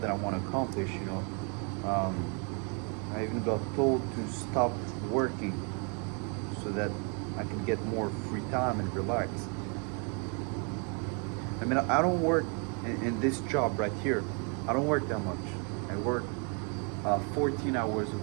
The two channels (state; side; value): quieter; left; 36.7 dB